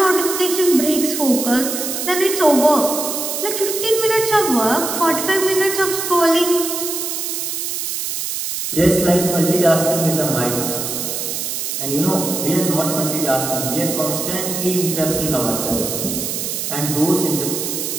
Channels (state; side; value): noise; right; hiss, 3 dB below the sound